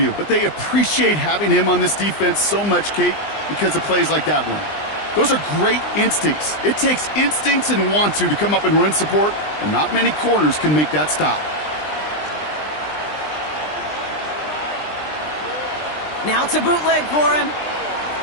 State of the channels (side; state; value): right; late; 20 ms